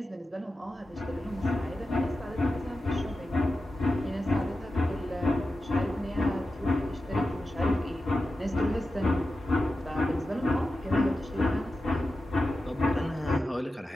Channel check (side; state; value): both; normal; correlation 0.92